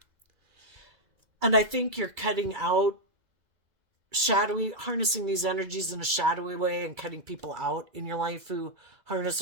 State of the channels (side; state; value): left; late; 2.3 ms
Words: And I think you're cutting out shadowy, harnessing these energies in a shadowy way and cutting people out in your life who harness